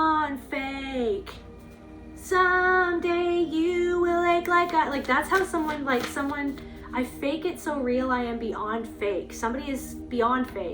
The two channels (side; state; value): both; identical; correlation 1.00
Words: fake. Someday you will ache like I, like that's how someone, I fake it so real, I am beyond fake. Somebody is beyond